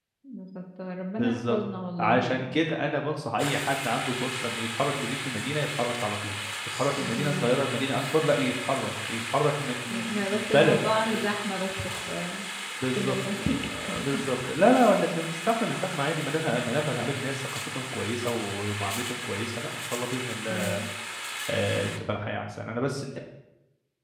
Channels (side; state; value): both; identical; correlation 1.00